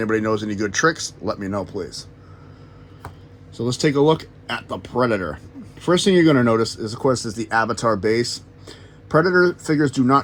knows any good tricks, let me know, please. So let's take a look at the Predator. First thing you're going to notice is, of course, is the Avatar base. Predator figures do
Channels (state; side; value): identical; both; correlation 1.00